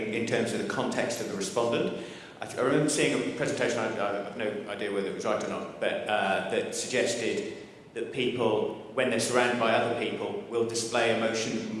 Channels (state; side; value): identical; both; correlation 1.00